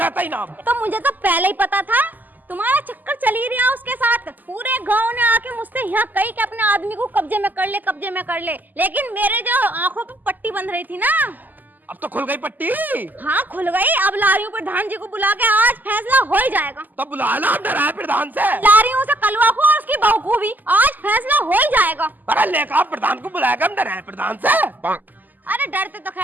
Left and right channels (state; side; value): late; left; 0.085 ms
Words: ही ना। तो मुझे तो पहले ही पता था तुम्हारा चक्कर चल ही रहा उसके साथ। पूरे गांव ने आके मुझसे यहाँ कही कि अपने आदमी को कब्जे में कर ले, कब्जे में कर ले, लेकिन मेरे जो आंखों पे पट्टी बंध रही थी ना, अब तो खुल गई पट्टी। हाँ खुल गई। अब ला रही हूँ प्रधान जी को बुला के, आज फैसला हो ही जाएगा। तो बुला ला डरा प्रधान से। ला रही हूँ उसे कलवा को और उसकी बहू को भी, आज फैसला हो ही जाएगा। अरे लेकर प्रधान को बुलाएगा, हम डरा प्रधान से। अरे डरते तो